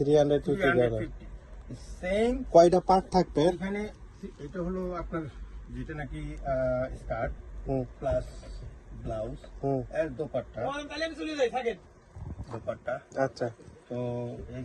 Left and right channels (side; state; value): both; identical; correlation 1.00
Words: সেম কয়টা পার্ট থাকবে? এখানে এটা হলো আপনার যেটা নাকি স্কার্ট হুম প্লাস ব্লাউজ হুম এর দোপাট্টা। আচ্ছা। তো